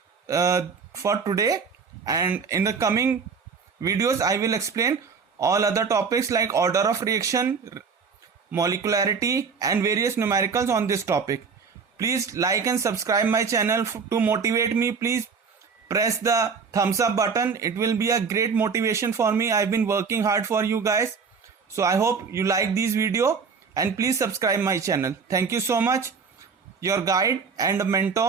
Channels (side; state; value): left; quieter; 5.5 dB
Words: for today, and in the coming videos I will explain all other topics like order of reaction, molecularity and various numericals on this topic. Please like and subscribe my channel to motivate me. Please press the thumbs up button. It will be a great motivation for me. I've been working hard for you guys. So I hope you like this video, and please subscribe my channel. Thank you so much. Your guide and